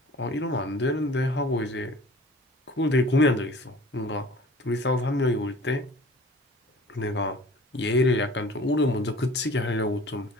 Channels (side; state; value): both; normal; correlation 0.46